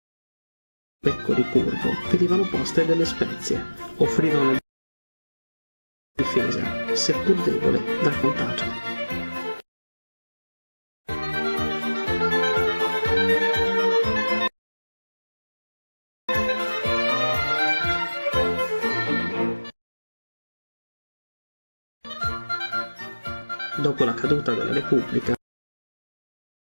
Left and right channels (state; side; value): inverted; both; correlation -1.00